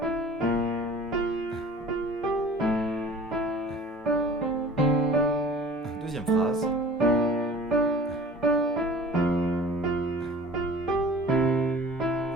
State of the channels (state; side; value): normal; both; correlation 0.44